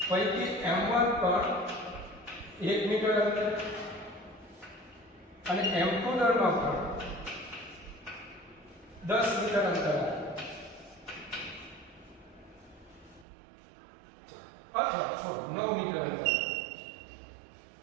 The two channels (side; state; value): left; drops out; at 13.2 s